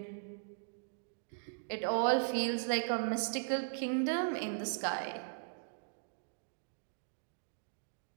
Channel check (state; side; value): silent; left; digital silence